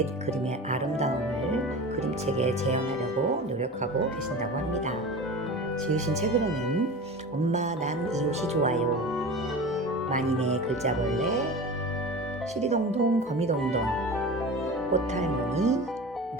그림의 아름다움을 그림책에 재현하려고 노력하고 계신다고 합니다. 지으신 책으로는 엄마 난 이웃이 좋아요, 만인의 글자벌레, 시리동동 거미동동, 꽃할머니,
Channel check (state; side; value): normal; both; correlation 0.32